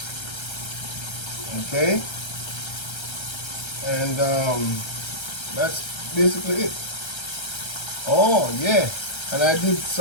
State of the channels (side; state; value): right; late; 1.3 ms